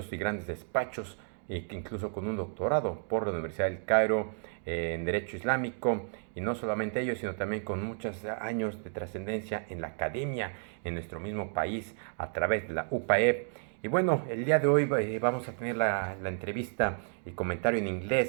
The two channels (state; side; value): silent; left; 57 dB below the other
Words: y grandes despachos, incluso con un doctorado por la Universidad del Cairo en Derecho Islámico, y no solamente ello, sino también con muchos años de trascendencia en la academia en nuestro mismo país a través de la UPAEP. Y bueno, el día de hoy vamos a tener la entrevista y comentario en